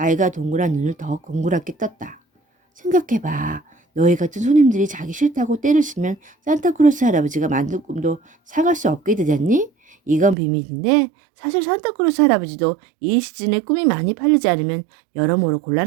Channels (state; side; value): drops out; left; at 10.4 s